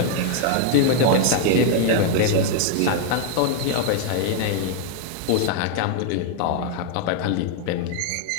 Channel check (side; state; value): both; different; correlation 0.00